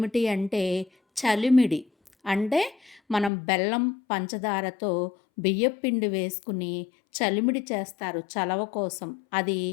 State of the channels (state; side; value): drops out; right; at 3.3 s